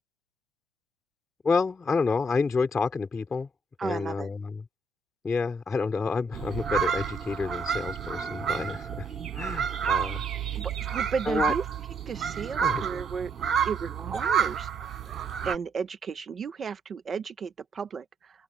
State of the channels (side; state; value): both; normal; correlation 0.72